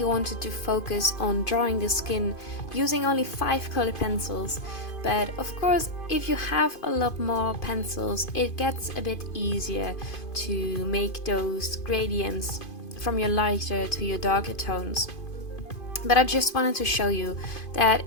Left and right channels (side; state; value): right; late; 2.5 ms